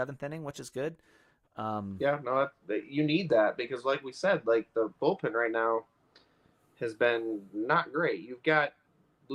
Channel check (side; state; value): both; identical; correlation 1.00